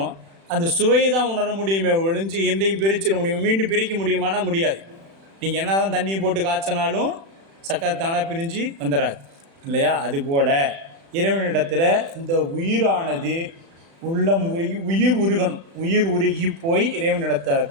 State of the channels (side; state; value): left; late; 36 ms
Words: அந்த சுவையை தான் உணர முடியுமே ஒழிஞ்சு எந்தையும் பிரிச்சிட முடியும். மீண்டும் பிரிக்க முடியுமானா முடியாது. நீங்கள் என்ன தான் தண்ணியை போட்டு காய்ச்சினாலும் சர்க்கரை தானாக பிரிஞ்சு வந்துடாது இல்லையா? அதுபோல் இறைவனிடத்தில் இந்த உயிரானது உள்ளம் உருகி உயிர் உருகி போய் இறைவனிடத்த